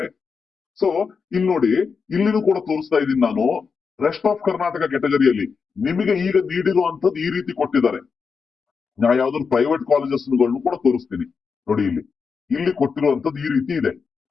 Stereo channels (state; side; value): quieter; right; 5.5 dB